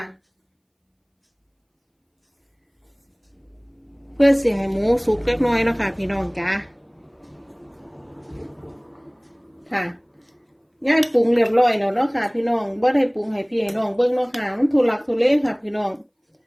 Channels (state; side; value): identical; both; correlation 1.00